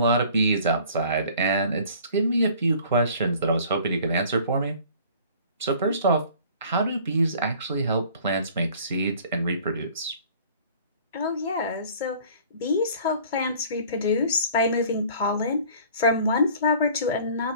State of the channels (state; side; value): inverted; both; correlation -0.50